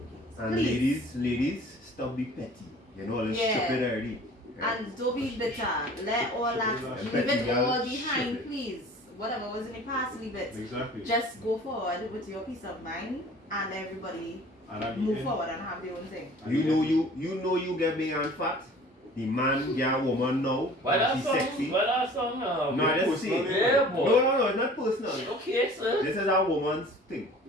And Please. ladies, stop be petty. You know all this Yeah. stupid already. Right? And don't be bitter. Let all that, leave Petty it girl, all shit behind, it. please. Whatever was in the past, leave it. Exactly. Just go forward with your peace of mind, and everybody And at the move end- forward and have their own thing. You know you get big and fat. The man get a woman now. Why that She's song? sexy. Why that song? No, I just personal, say. Yeah, boy. No, it's not personal. Okay, sir. This is a woman's thing.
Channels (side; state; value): both; normal; correlation 0.47